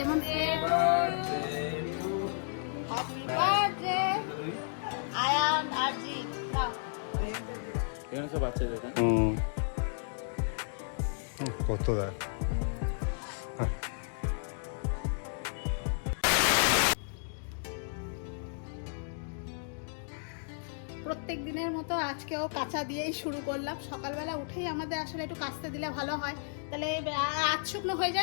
কত দেয় প্রত্যেক দিনের মতো আজকেও কাঁচা দিয়েই শুরু করলাম। সকালবেলা উঠেই আমাদের আসলে একটু কাচতে দিলে ভালো হয়, তাহলে আজ শুকনো হয়ে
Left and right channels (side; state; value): right; silent; digital silence